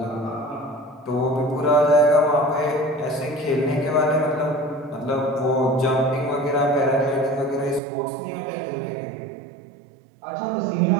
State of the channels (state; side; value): drops out; left; at 7.8 s